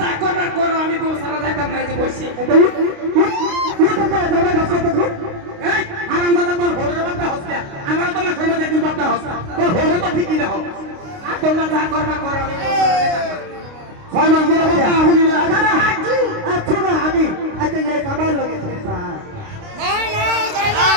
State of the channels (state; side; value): late; left; 29 ms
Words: যা করবার করো আমি বউ সারা যাইতাম না যে বসি এই হারামজাদা তোর হরে বাপটা হসকে আমার তো না সময় দেখি বাপটা হসকে তোর হরে তো ঠিকই দেখো আর তোমরা যা করবার করো আমি বউ সারা যাইতাম না 6 মাস ধরে বাবা হুনি না আচ্ছা না আমি আচ্ছা এই কামাল লাগেছে না